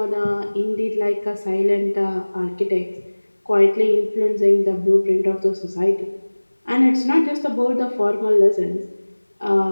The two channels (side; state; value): both; inverted; correlation -1.00